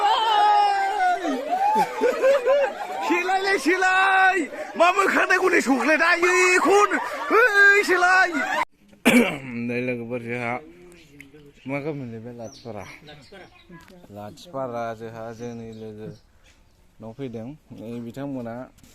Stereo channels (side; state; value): both; identical; correlation 1.00